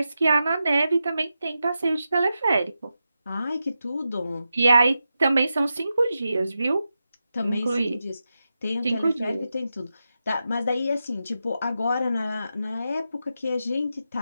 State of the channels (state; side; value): inverted; both; correlation -0.89